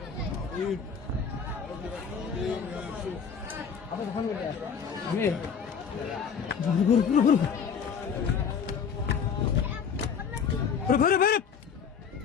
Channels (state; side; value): quieter; right; 6.7 dB